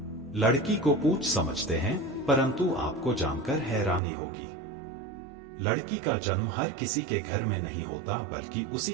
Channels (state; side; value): drops out; left; at 4.0 s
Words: लड़की को पूछ समझते हैं, परंतु आपको जानकर हैरानी होगी, लड़की का जन्म हर किसी के घर में नहीं होता, बल्कि उसी